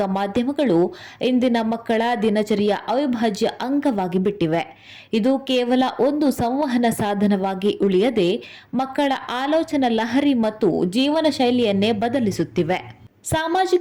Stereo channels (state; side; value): identical; both; correlation 1.00